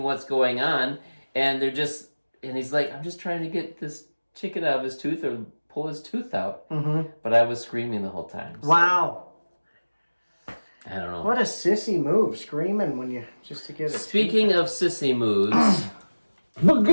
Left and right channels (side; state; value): both; inverted; correlation -1.00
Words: what's going on, and he's like, I'm just trying to get this chicken out of his tooth or pull his tooth out. But I was screaming the whole time. So. Wow. I don't know. What a sissy move, screaming just to get it. Speaking of sissy moves,